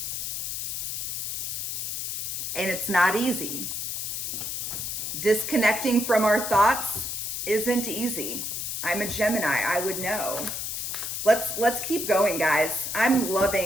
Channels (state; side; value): noise; left; hiss, 3 dB below the sound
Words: And it's not easy. Disconnecting from our thoughts isn't easy. I'm a Gemini, I would know. Let's keep going, guys. I'm